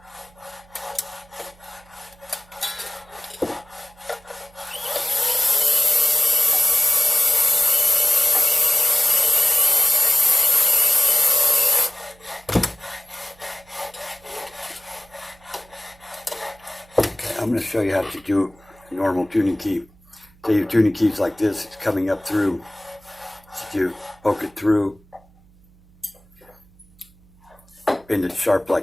I'm going to show you how to do normal tuning key. Say your tuning key's like this, it's coming up through. So you poke it through, bend it sharp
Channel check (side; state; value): right; noise; hum, 28 dB below the sound